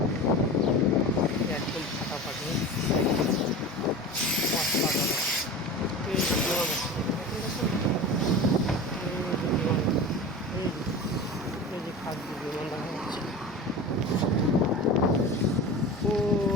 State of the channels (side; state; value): both; normal; correlation 0.32